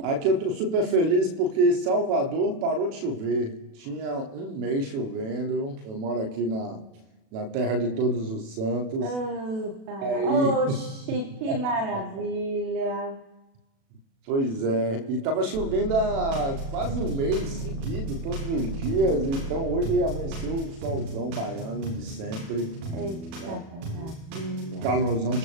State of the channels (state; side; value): late; left; 36 ms